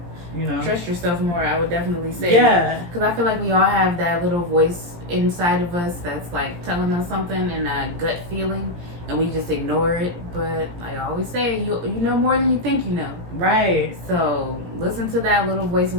Trust yourself more, I would definitely say. Yeah. Because I feel like we all have that little voice inside of us that's like telling us something and a gut feeling, and we just ignore it. But I always say, you know more than you think you know. Right. So listen to that little voice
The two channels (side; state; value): left; late; 17 ms